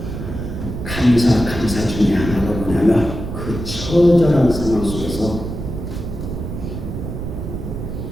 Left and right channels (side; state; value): right; noise; rumble, 6 dB below the sound